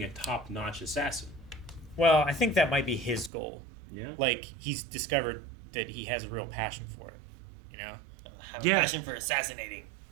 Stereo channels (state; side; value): drops out; left; at 3.3 s